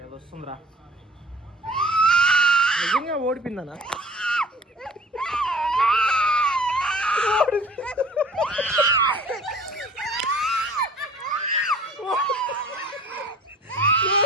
అది వస్తుందిరా. నిజంగా ఓడిపోయిందనా?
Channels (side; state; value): both; normal; correlation 0.49